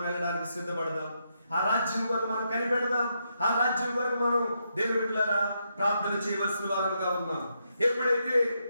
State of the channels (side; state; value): both; inverted; correlation -0.81